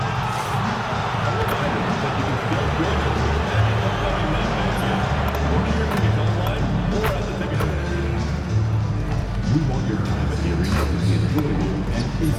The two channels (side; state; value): both; identical; correlation 1.00